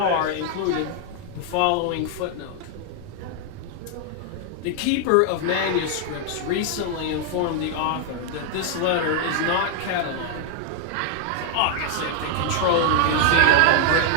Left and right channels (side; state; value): both; different; correlation 0.00